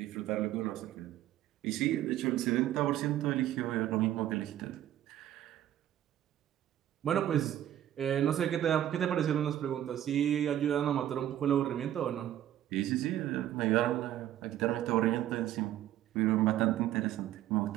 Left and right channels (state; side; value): quieter; left; 12.2 dB